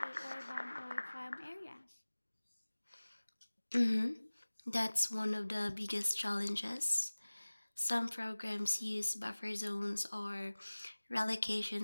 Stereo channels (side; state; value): both; inverted; correlation -1.00